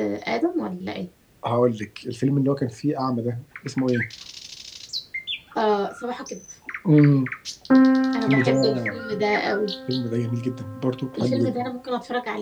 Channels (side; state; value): both; identical; correlation 1.00